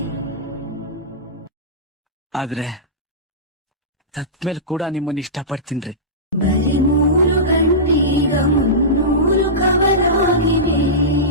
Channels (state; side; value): normal; both; correlation -0.18